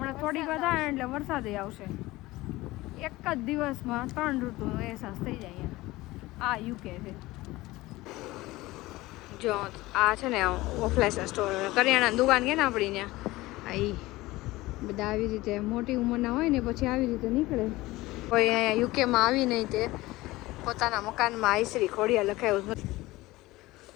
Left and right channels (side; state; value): right; quieter; 19.2 dB